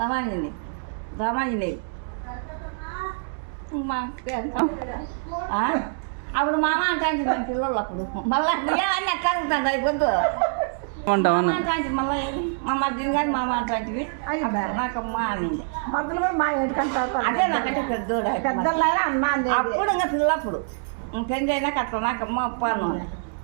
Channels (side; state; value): left; silent; digital silence